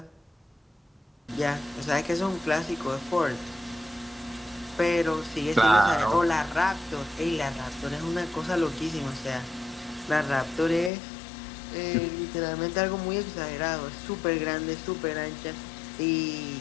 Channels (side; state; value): right; drops out; at 10.9 s